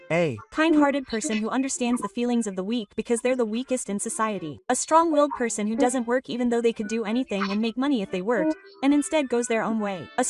A. Kind-hearted person who understands the feelings of the weak because they're the weakest in society. A strong-willed person who doesn't work even though they could do anything and make money if they worked, and instead goes their own way. A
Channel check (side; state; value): both; identical; correlation 1.00